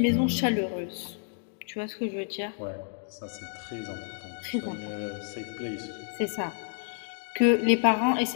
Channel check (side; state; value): right; silent; 58 dB below the other